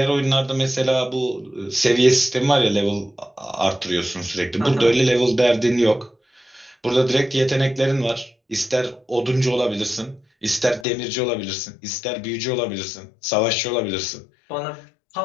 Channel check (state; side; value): drops out; right; at 10.9 s